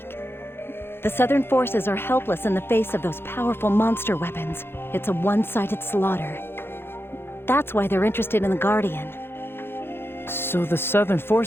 The Southern forces are helpless in the face of those powerful monster weapons. It's a one-sided slaughter. That's why they're interested in the Guardian. So the Southern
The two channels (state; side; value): late; right; 0.11 ms